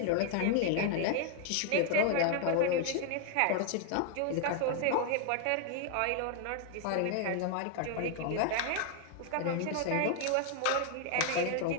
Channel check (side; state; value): both; different; correlation 0.00